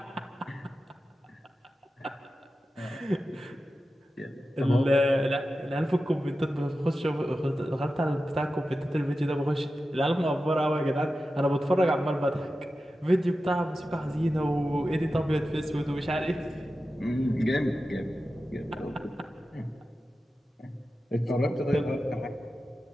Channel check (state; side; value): normal; both; correlation 0.93